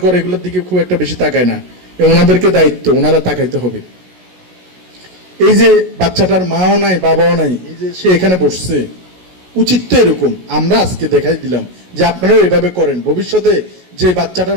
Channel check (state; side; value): late; left; 16 ms